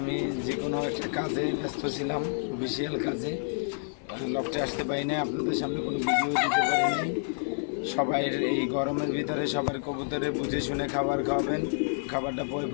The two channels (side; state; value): right; silent; 58 dB below the other